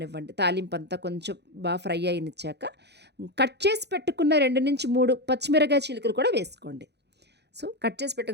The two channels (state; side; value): late; left; 0.49 ms